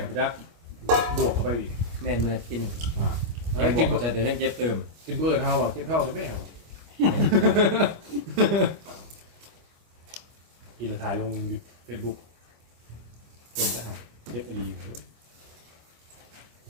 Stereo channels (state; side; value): late; left; 25 ms